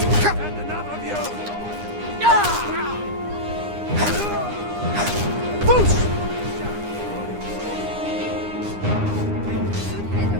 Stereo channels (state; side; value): late; left; 9.8 ms